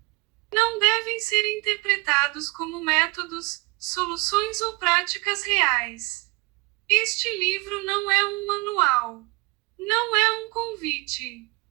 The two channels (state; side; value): quieter; left; 25.3 dB